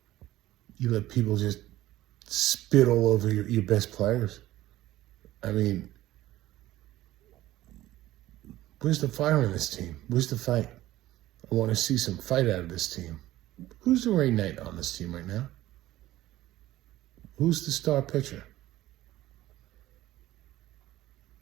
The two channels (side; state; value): left; quieter; 15.4 dB